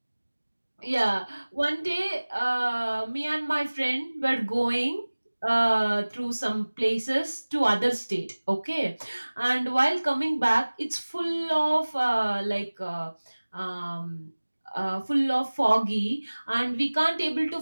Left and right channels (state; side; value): inverted; both; correlation -1.00